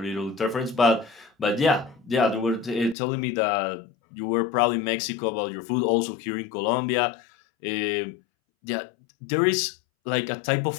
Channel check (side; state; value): right; drops out; at 3.0 s